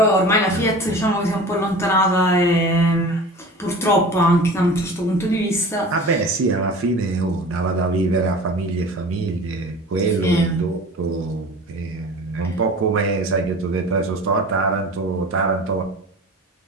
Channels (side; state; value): both; normal; correlation 0.38